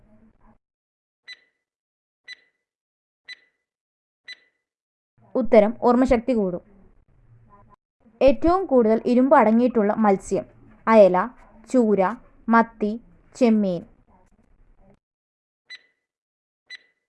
ഉത്തരം ഓർമ്മശക്തി കൂടും. ഏറ്റവും കൂടുതൽ ഇരുമ്പ് അടങ്ങിയിട്ടുള്ള മത്സ്യം: അയല, ചൂര, മത്തി, ചെമ്മീൻ.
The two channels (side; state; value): both; identical; correlation 1.00